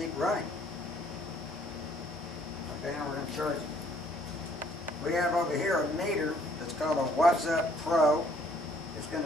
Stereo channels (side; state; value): both; normal; correlation 0.63